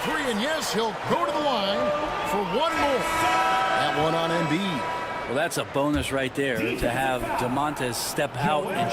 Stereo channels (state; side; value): identical; both; correlation 1.00